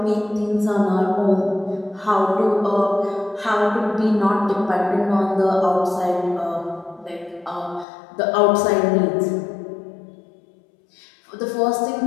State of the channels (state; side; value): drops out; right; at 7.9 s